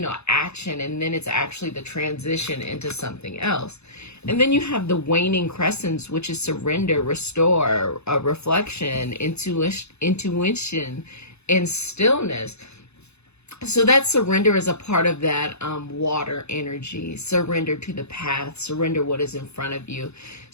action, and then it's actually the transition into something else. And then you have the waning crescents, which is surrender, restore, reflection, intuition, and stillness. So that surrender is a part of that water energy. Surrender to the path. Surrender what is in front of you.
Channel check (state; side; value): late; right; 0.80 ms